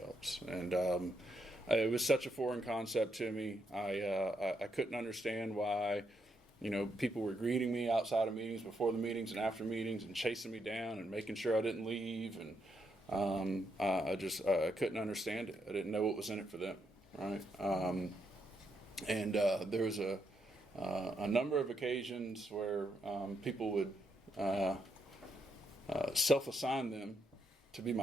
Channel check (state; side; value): normal; both; correlation 0.78